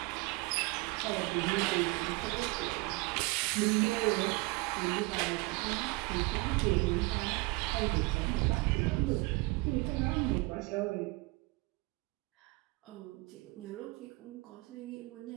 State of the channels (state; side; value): quieter; left; 25.1 dB